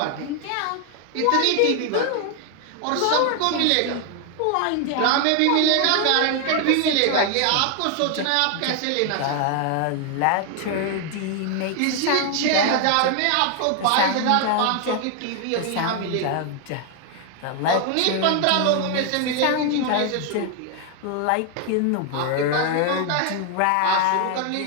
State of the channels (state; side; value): different; both; correlation 0.00